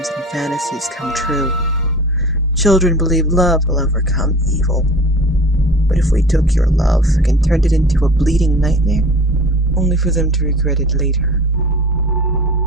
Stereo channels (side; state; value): both; normal; correlation 0.40